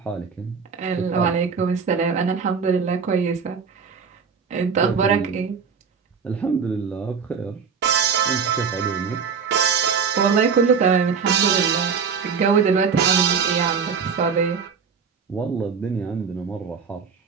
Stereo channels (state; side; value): quieter; left; 6.1 dB